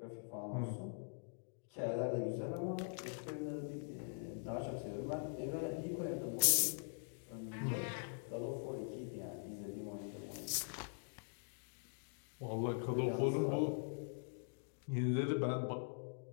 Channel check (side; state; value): right; silent; digital silence